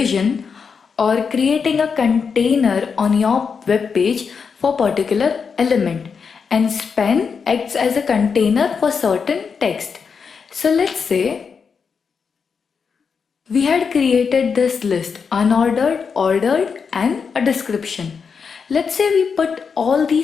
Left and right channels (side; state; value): right; quieter; 5.9 dB